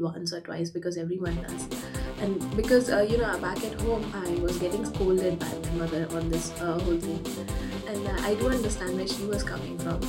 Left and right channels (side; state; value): both; identical; correlation 1.00